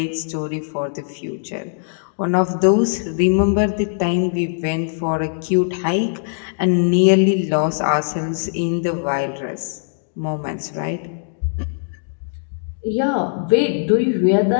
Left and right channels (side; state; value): right; silent; digital silence